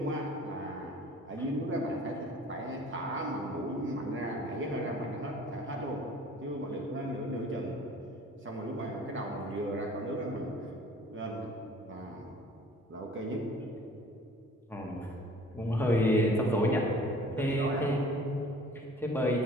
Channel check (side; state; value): both; normal; correlation 0.49